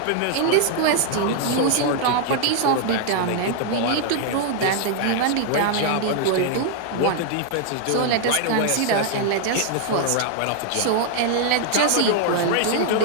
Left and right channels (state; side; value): different; both; correlation 0.00